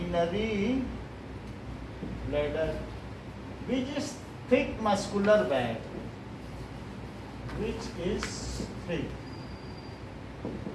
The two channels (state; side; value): identical; both; correlation 1.00